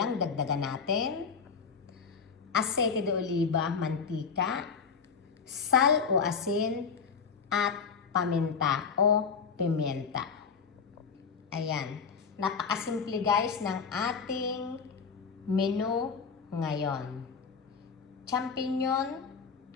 dagdagan natin, asete de oliva, mantika, sal o asin, at paminta o pimienta. Ayan, napakasimple guys ng ating menu ngayon. Champignon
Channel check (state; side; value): quieter; right; 5.8 dB